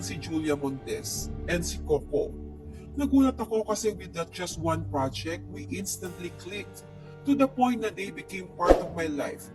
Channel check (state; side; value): identical; both; correlation 1.00